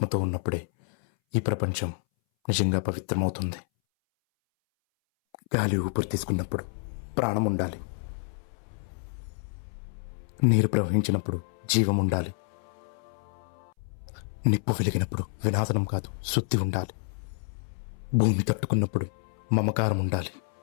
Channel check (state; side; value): silent; right; 59 dB below the other